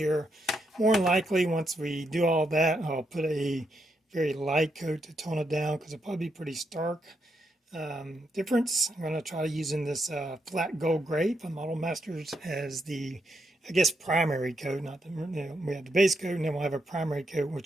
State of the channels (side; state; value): both; normal; correlation 0.80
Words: More than likely, once we do all that, I'll put a very light coat to tone it down because it'll probably be pretty stark difference. I'm going to try using this flat gold gray from Model Masters as the, I guess, primary coat. Not the, we have the base coat, and then we'll have a primary coat,